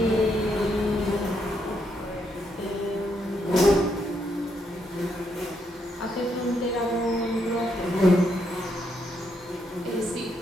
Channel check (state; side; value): normal; both; correlation 0.77